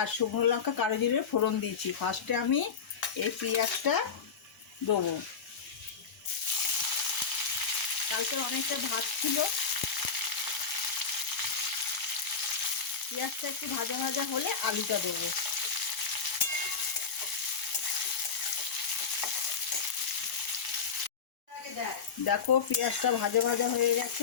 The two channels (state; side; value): quieter; right; 6.0 dB